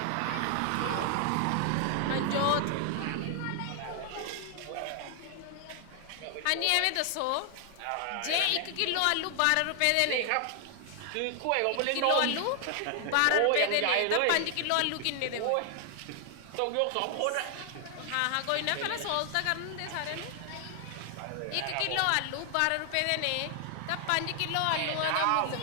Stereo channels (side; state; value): both; different; correlation 0.00